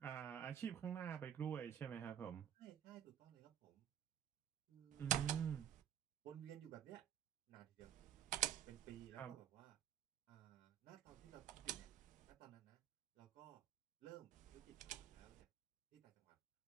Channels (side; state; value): left; quieter; 10.1 dB